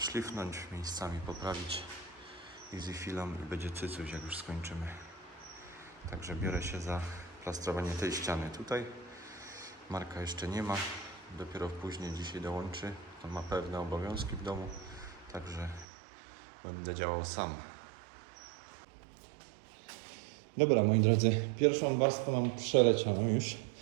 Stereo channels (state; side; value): drops out; left; at 15.9 s